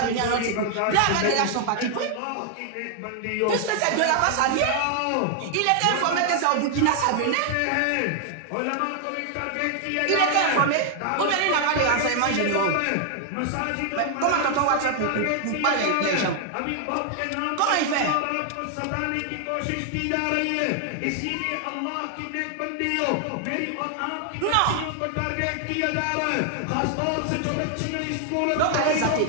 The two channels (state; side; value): different; both; correlation 0.00